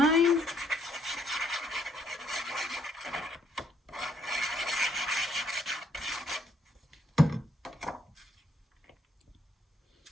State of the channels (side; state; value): both; normal; correlation 0.69